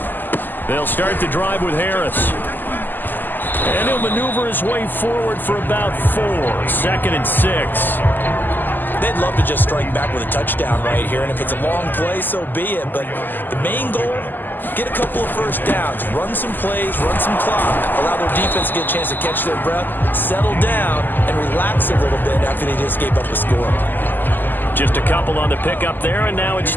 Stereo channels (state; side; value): late; right; 0.089 ms